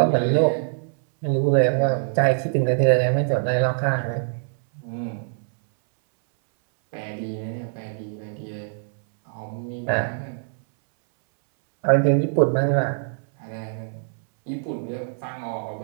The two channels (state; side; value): silent; left; 63 dB below the other